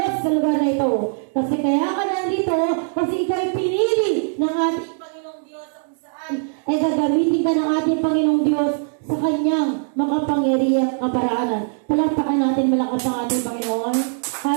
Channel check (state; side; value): silent; left; digital silence